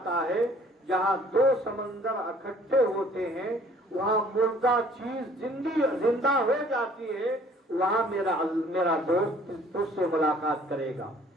ہے، جہاں دو سمندر اکٹھے ہوتے ہیں وہاں مردہ چیز زندہ ہو جاتی ہے، وہاں میرا دوست تجھ سے ملاقات کرے گا.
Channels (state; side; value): normal; both; correlation 0.56